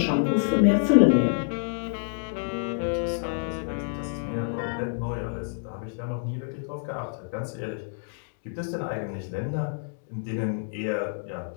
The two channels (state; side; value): silent; right; digital silence